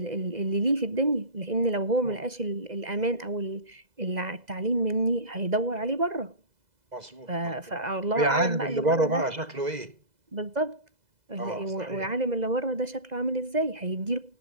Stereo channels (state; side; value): late; left; 2.0 ms